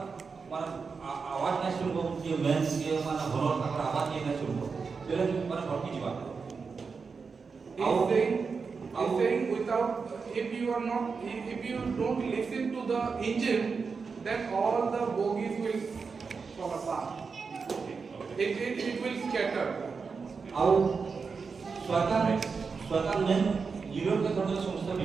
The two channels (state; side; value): quieter; left; 5.1 dB